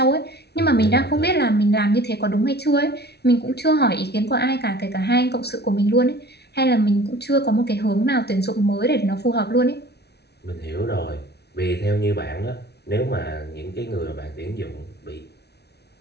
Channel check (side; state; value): right; late; 0.49 ms